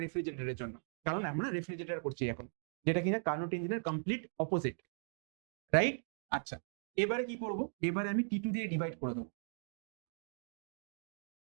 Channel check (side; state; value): left; silent; digital silence